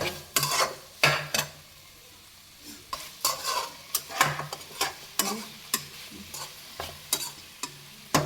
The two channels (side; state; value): both; identical; correlation 1.00